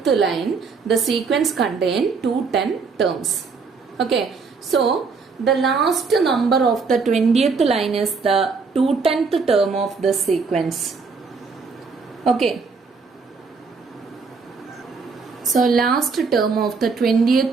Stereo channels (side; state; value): left; quieter; 4.8 dB